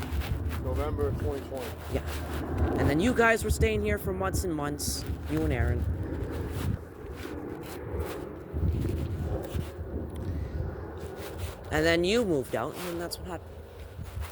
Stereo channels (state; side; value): identical; both; correlation 1.00